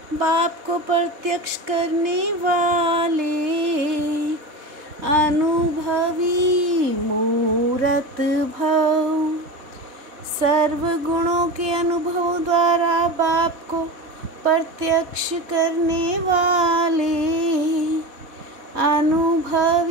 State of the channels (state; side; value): late; left; 4.1 ms